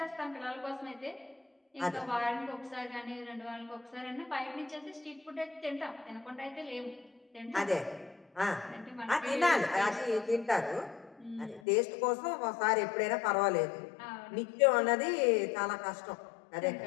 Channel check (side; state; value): right; drops out; at 11.6 s